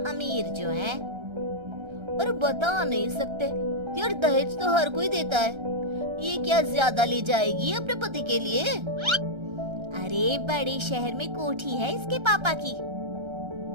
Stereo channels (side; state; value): left; late; 1.3 ms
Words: अमीर जो हैं। और बता नहीं सकते यार, दहेज तो हर कोई देता है, ये क्या ज्यादा ले जाएगी अपने पति के लिए? अरे बड़े शहर में कोठी है इसके पापा की।